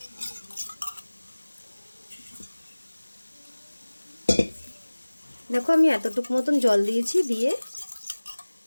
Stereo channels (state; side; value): inverted; both; correlation -1.00